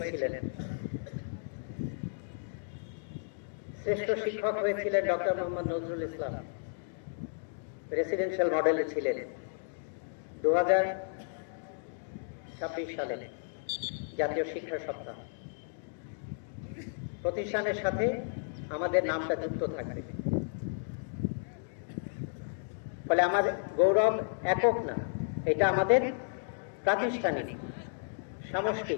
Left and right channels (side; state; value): right; silent; digital silence